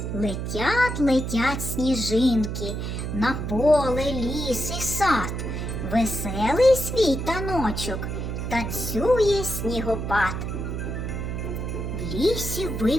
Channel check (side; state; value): right; noise; hum, 4 dB below the sound